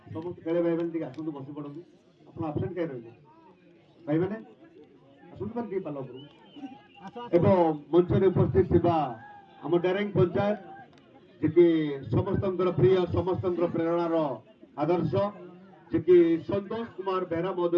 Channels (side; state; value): both; identical; correlation 1.00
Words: ସମସ୍ତ ଖେଳେ ଭାଇମାନେ ଟିକେ ଆସନ୍ତୁ, ବସି ପଡ଼ନ୍ତୁ। ଆପଣ ଆବସେଣ୍ଟ କାହିଁ ରହିଲେ ଭାଇମାନେ? ଆସନ୍ତୁ ମାନେ ଟିକେ ପାଲ ଉପରକୁ। ଏବଂ ମଞ୍ଚରେ ଉପସ୍ଥିତ ଥିବା ଆମ ଡେରେଙ୍ଗ ପଞ୍ଚାୟତ, ଯିଏକି ସମସ୍ତଙ୍କର ପ୍ରିୟ, ସମସ୍ତଙ୍କର ପ୍ରେରଣାର ଆଦର୍ଶ, ଯିଏକି ସନ୍ତୋଷ କୁମାର ବେହେରା